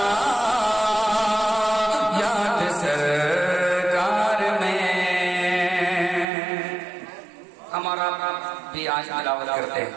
याद सरकार में। हमारा भी आज तिलावत करते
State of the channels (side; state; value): left; drops out; at 6.2 s